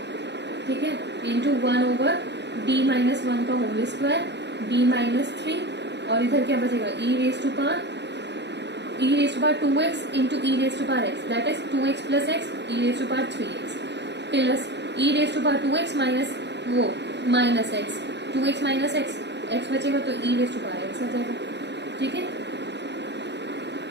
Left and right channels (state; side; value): late; left; 0.50 ms